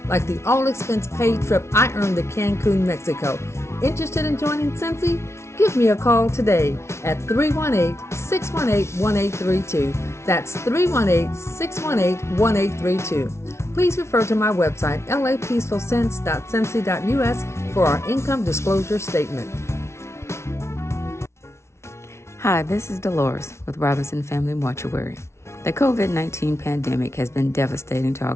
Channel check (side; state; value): right; late; 0.13 ms